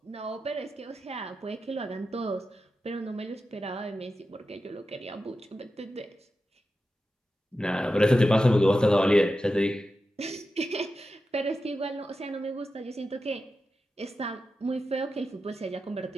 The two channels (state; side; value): normal; both; correlation 0.91